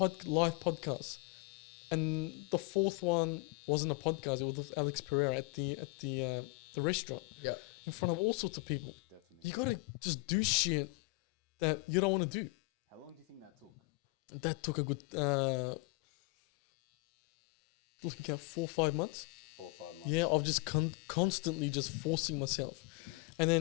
and the 4th one wasn't a podcast. It was with Alex Pereira at the restaurant, in front of all sorts of people. Definitely. You gotta just do shit that you don't want to do. How long do you think that took? That took a good looking at 4 or 5 months. 4 or 5 months. Yeah, of just constantly just forcing myself, and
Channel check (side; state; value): right; quieter; 25.9 dB